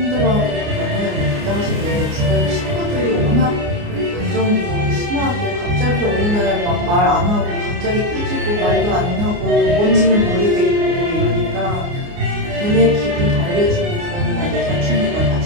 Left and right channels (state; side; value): late; left; 29 ms